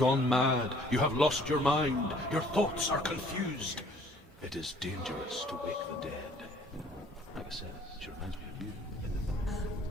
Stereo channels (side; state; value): both; normal; correlation 0.56